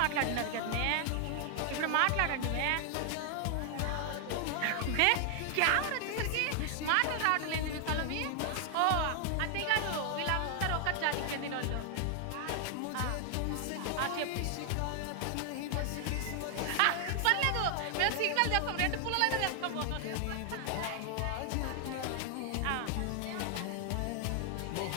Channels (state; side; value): different; both; correlation 0.00